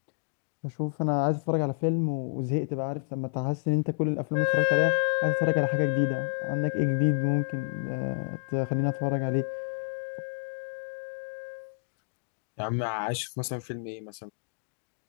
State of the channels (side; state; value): right; silent; digital silence